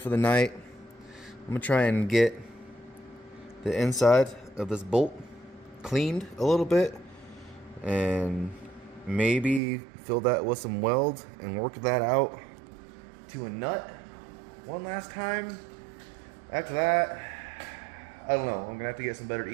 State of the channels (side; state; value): left; drops out; at 9.6 s